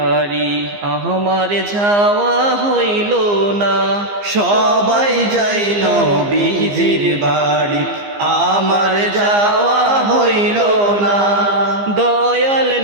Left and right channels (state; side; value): late; left; 15 ms